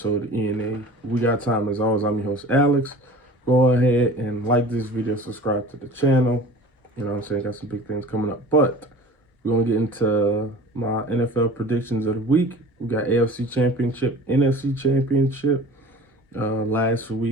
of ENA. We got time as always. I'm your host, Alex. Go ahead and like this video, subscribe to the channel. You know what I'm saying? Got some big things coming up. But we're going to get into my NFL predictions of the week. We got AFC Championship, NFC Championship. Last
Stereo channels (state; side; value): normal; both; correlation 0.42